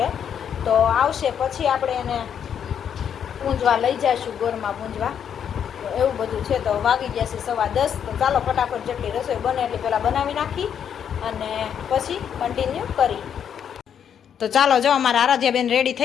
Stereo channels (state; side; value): quieter; right; 8.4 dB